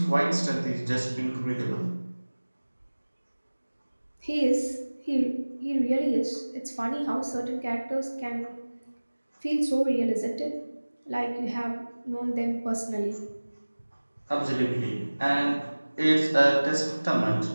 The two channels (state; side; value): inverted; both; correlation -1.00